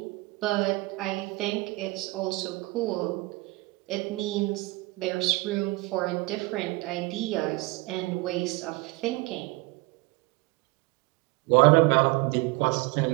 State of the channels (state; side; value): quieter; left; 23.1 dB